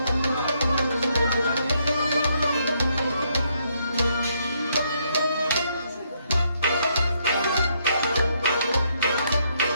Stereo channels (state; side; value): inverted; both; correlation -0.74